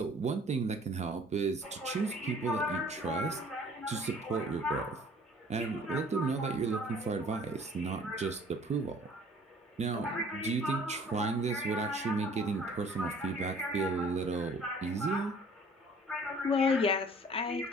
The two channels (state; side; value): normal; both; correlation 0.53